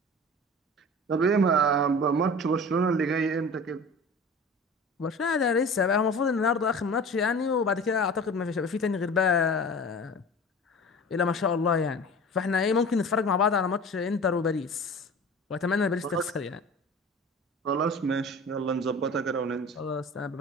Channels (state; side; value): normal; both; correlation 0.38